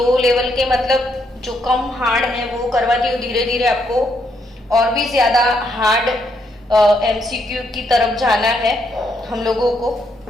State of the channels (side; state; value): both; normal; correlation 0.75